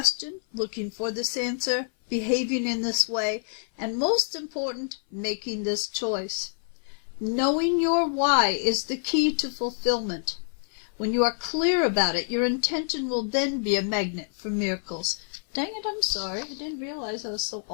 looking for this answer, behaving in this way, and most important, making this choice. Knowing your why is the key to fulfillment. When you are clear about it, your intention will then be a magnet for miracles. Dang it, I'm sorry. I didn't realize I was so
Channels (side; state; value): right; silent; 57 dB below the other